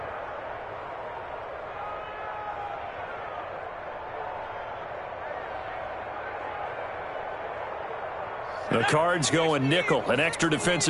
The Cards going nickel. An extra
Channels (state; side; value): identical; both; correlation 1.00